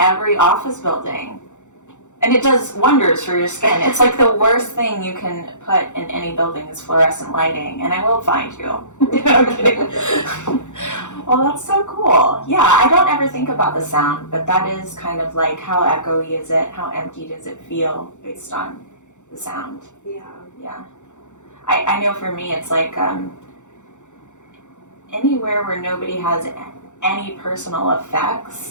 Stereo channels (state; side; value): late; right; 0.85 ms